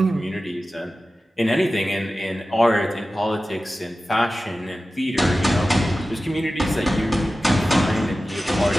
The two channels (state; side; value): normal; both; correlation 0.95